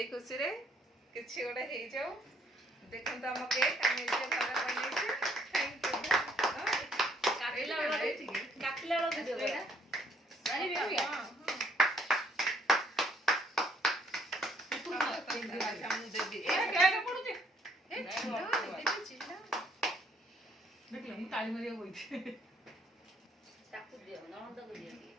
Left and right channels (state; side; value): normal; both; correlation 0.66